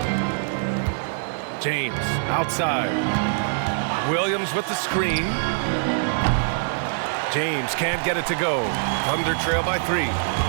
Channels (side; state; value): left; silent; digital silence